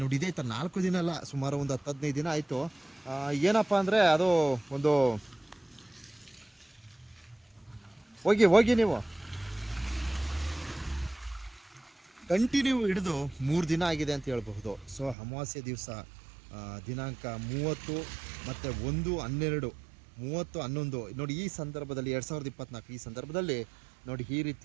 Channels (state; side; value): drops out; left; at 15.2 s